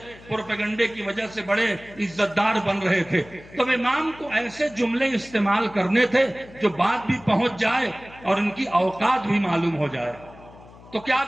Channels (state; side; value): noise; left; hum, 21 dB below the sound